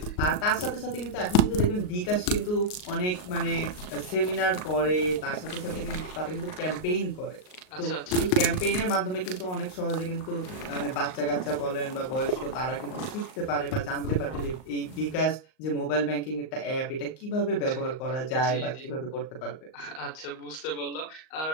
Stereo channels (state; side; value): late; right; 38 ms